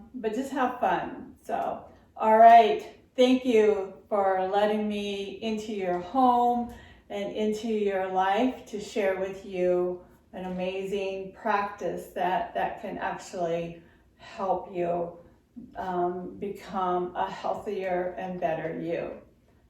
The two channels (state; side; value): identical; both; correlation 1.00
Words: just have fun. So, all right, thank you for letting me into your home and into your life to share with you an amazing practice that can actually help you become a healthier and better you.